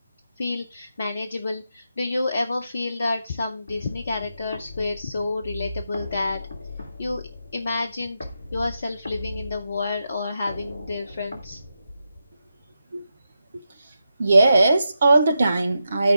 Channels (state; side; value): inverted; both; correlation -0.87